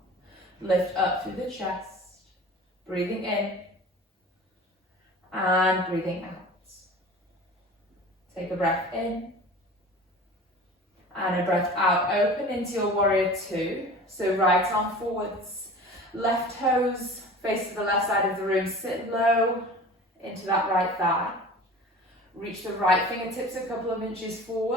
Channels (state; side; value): normal; both; correlation 0.39